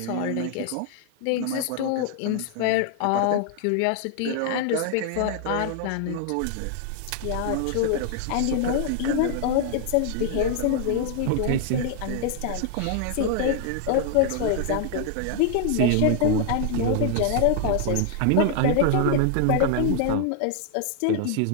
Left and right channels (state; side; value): different; both; correlation 0.00